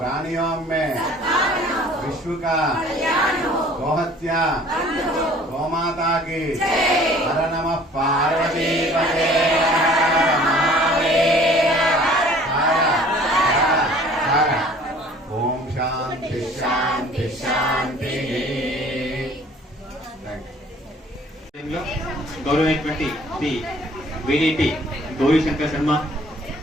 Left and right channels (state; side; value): normal; both; correlation 0.52